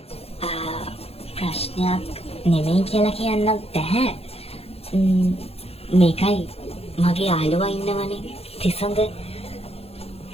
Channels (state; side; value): late; right; 0.29 ms